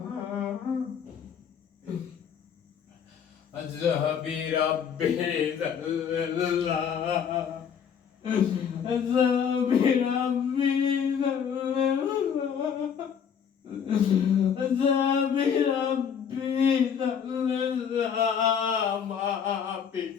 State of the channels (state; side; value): quieter; right; 7.6 dB